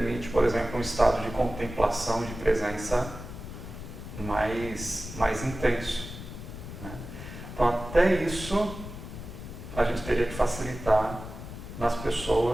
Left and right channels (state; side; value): noise; left; rumble, 11 dB below the sound